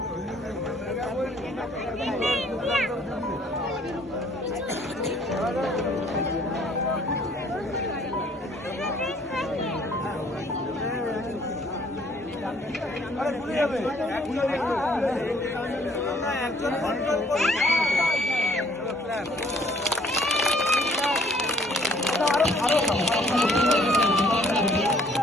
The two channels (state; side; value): normal; both; correlation 0.60